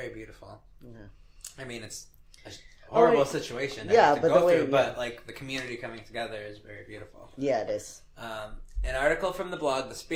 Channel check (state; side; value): identical; both; correlation 1.00